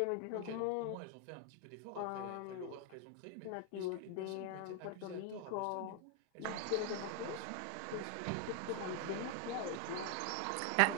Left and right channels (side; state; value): both; different; correlation 0.00